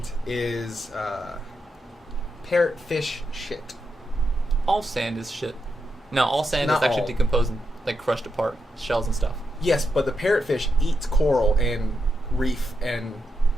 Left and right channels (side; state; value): both; normal; correlation 0.84